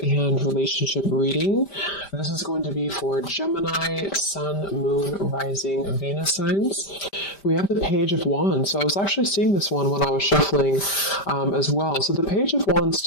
relationship reading. This is going to be for Gemini, Sun, Moon, Rising, Venus signs. We have the Page of Wands. So I was actually seeing this one when I was shuffling as well. So the Page of Wands,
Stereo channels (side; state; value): right; late; 5.1 ms